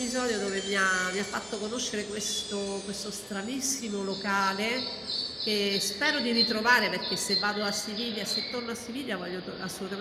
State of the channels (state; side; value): identical; both; correlation 1.00